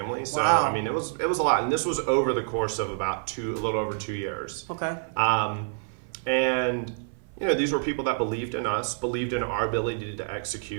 So I mean, it was a lot, and this was over the course of about a little over 2 years. Okay. And these were people that believed in us, believed in our ability to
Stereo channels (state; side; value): silent; left; 55 dB below the other